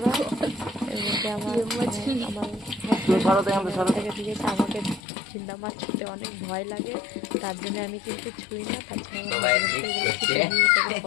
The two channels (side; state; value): right; drops out; at 5.0 s